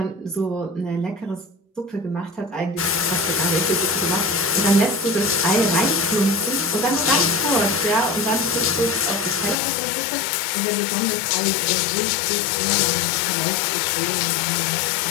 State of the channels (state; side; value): drops out; right; at 9.6 s